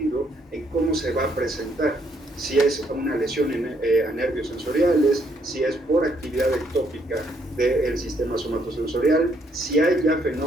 en cómo se va a presentar. Si es una lesión a nervios sensoriales, si es por actividad ectópica del sistema somatosensorial, si hay ya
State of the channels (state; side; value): normal; both; correlation 0.71